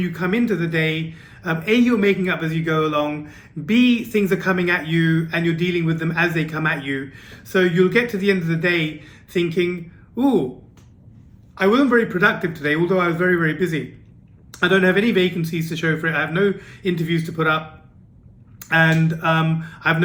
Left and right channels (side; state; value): both; identical; correlation 1.00